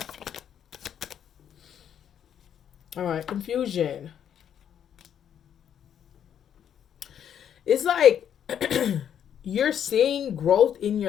All right, confusion. It's like you're seeing growth in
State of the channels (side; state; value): right; quieter; 9.2 dB